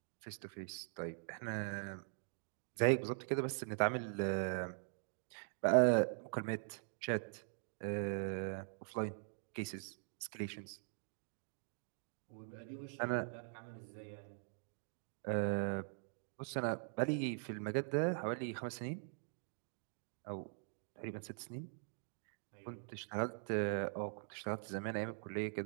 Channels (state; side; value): silent; left; digital silence